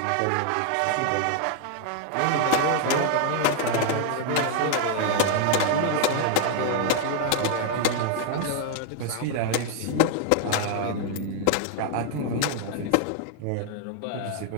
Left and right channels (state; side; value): different; both; correlation 0.00